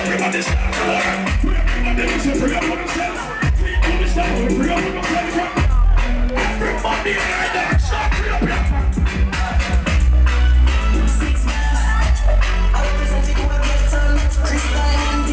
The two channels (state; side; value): identical; both; correlation 1.00